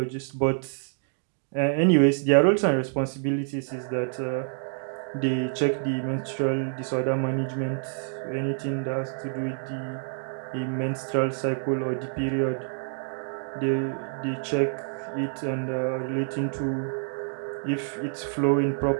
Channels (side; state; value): left; silent; 60 dB below the other